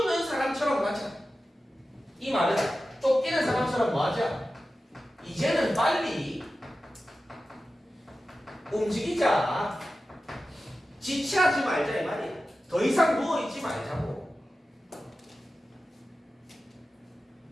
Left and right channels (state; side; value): normal; both; correlation 0.94